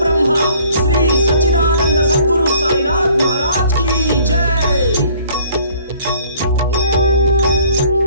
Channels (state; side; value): inverted; both; correlation -0.57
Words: శ్రీ సచ్చిదానంద సద్గురు సాయినాథ్ మహారాజ్ కి జై.